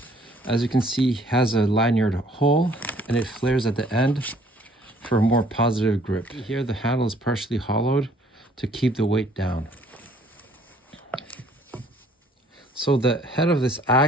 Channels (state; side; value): normal; both; correlation 0.60